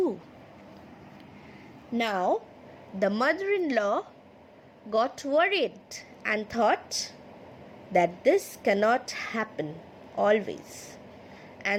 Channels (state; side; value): identical; both; correlation 1.00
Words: Now, the mother-in-law got worried and thought that this cannot happen always.